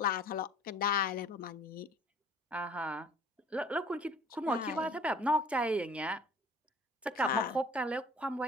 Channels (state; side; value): normal; both; correlation 0.51